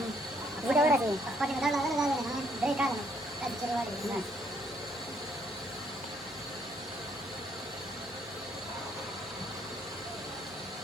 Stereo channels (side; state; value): left; noise; hum, 26 dB below the sound